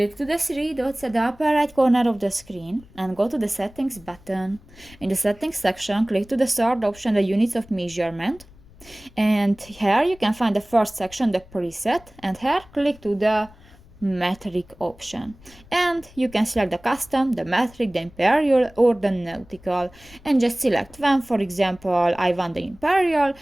to the three dots at the upper right corner of the screen and go to the Settings button. In the Settings section, click to the third option, the Units of Measurement. And here you can find the first section, the Preset, and here click to the Metric option. And you can select the Custom, the Metric, the Imperial, or the Nautical. And just select one, for example, I want the Imperial,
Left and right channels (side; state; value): left; noise; rumble, 24 dB below the sound